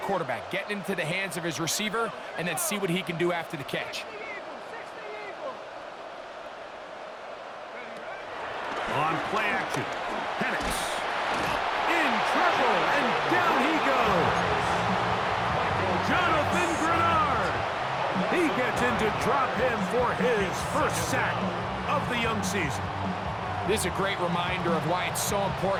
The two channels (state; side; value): identical; both; correlation 1.00